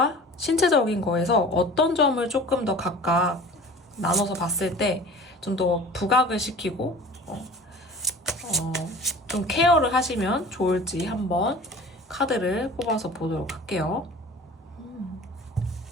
신체적인 거에서 어떤 점을 조금 더 각각 나눠서 봤을 때 좀 더 부각을 시키고 좀 케어를 하시면 좋을지 한번 카드를 뽑아서 보도록 할게요.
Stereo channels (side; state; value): both; normal; correlation 0.42